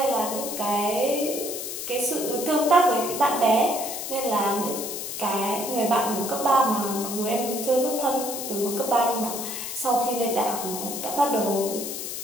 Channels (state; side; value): noise; left; hiss, 6 dB below the sound